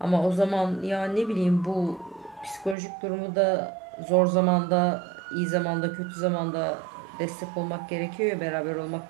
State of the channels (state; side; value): drops out; left; at 2.8 s